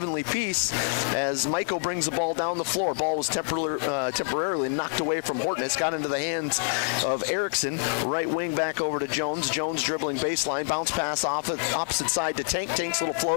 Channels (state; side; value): silent; right; 60 dB below the other